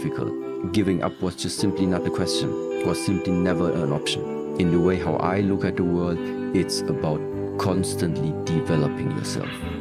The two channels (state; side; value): identical; both; correlation 1.00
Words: Giving up was just simply not a question, was simply never an option. In the way how I look at the world, it's about constantly developing yourself.